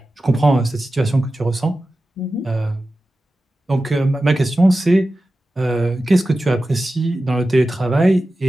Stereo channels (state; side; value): normal; both; correlation 0.94